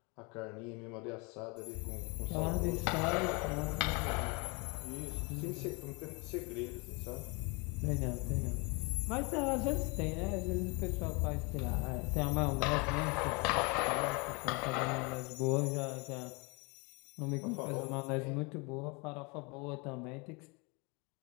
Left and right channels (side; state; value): right; quieter; 29.8 dB